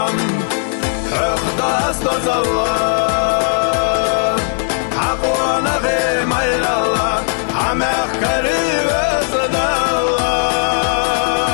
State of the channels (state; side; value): silent; right; 65 dB below the other